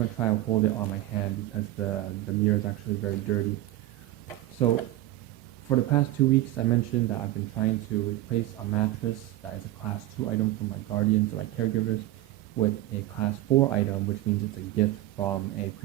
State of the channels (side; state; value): left; quieter; 15.5 dB